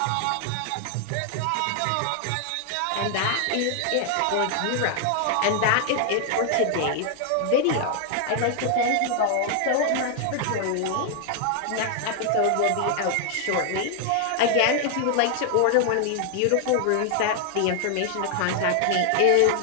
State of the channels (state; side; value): different; both; correlation 0.00